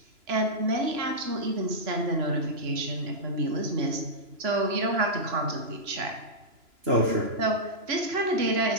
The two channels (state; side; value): late; left; 3.0 ms